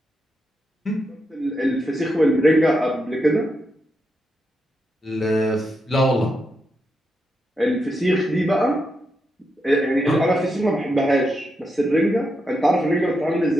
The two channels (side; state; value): both; normal; correlation 0.84